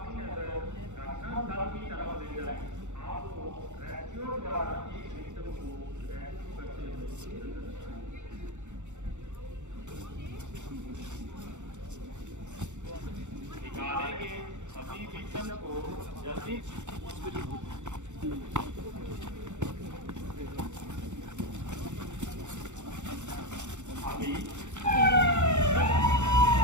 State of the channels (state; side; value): late; left; 0.84 ms